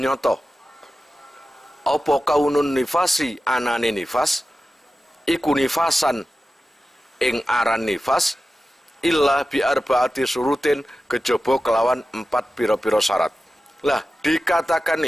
apa kaunun nifasi anane nifas iku nifasan ing aran nifas illa bi arbaati surutin kejaba kelawan 4 pira-pira syarat. Lah, dikatakan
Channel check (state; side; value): normal; both; correlation 0.93